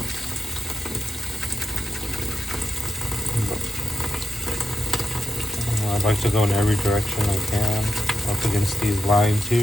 I like to go in every direction I can up against these lines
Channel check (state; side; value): normal; both; correlation 0.88